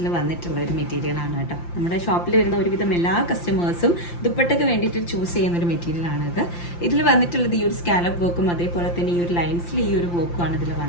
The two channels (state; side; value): late; right; 5.8 ms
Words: വന്നിട്ടുള്ള ഒരു മെറ്റീരിയലാണ് കേട്ടോ. നമ്മുടെ ഷോപ്പിൽ വരുന്ന ഒരുവിധം എല്ലാ കസ്റ്റമേഴ്സും ദുപ്പട്ടയ്ക്ക് വേണ്ടിയിട്ട് ചൂസ് ചെയ്യുന്ന ഒരു മെറ്റീരിയലാണ് ഇത്. ഇതിൽ വന്നിട്ടുള്ളത് ഈ ഒരു സ്കാലപ്പ് വർക്കും അതേപോലെ തന്നെ ഈ ഒരു ലൈൻസിൽ ഈ ഒരു വർക്കുമാണ് ഇതിൽ